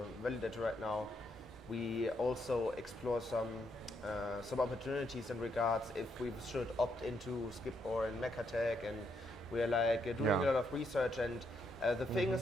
validator right now, we also explore some opportunities in regards if we should opt into Skip or in Mekatek, and we're like doing a lot of research, and the thing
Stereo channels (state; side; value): normal; both; correlation 0.77